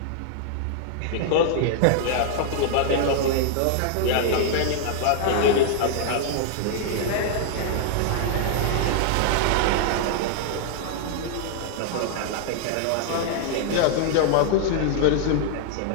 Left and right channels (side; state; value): both; different; correlation -0.01